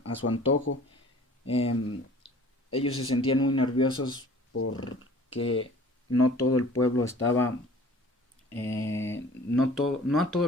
a su antojo. Eh, Ellos se sentían muy nerviosos porque no todo el pueblo estaba, no a todo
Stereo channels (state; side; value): normal; both; correlation 0.48